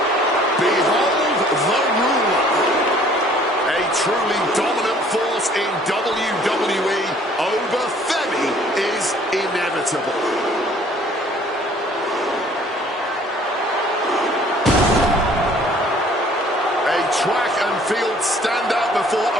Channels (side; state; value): both; normal; correlation 0.56